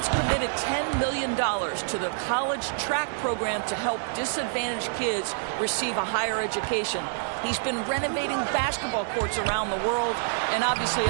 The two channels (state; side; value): silent; left; digital silence